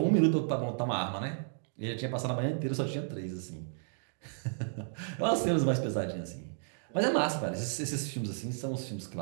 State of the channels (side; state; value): left; silent; digital silence